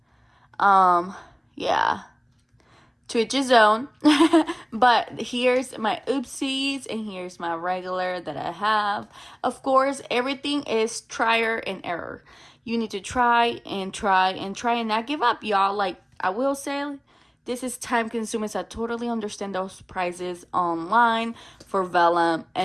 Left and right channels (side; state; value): both; identical; correlation 1.00